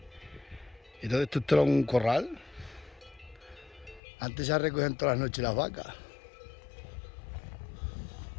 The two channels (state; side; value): drops out; right; at 4.0 s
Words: Entonces esto era un corral. Antes se recogían todas las noches las vacas.